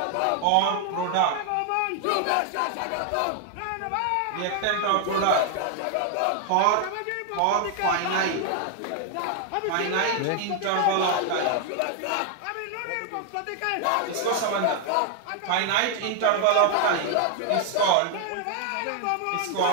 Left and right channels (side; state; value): both; different; correlation 0.00